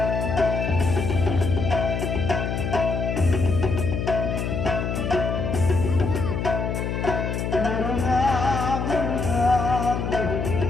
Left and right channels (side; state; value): left; noise; hum, 2 dB below the sound